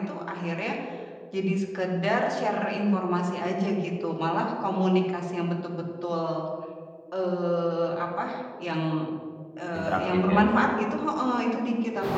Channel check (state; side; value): identical; both; correlation 1.00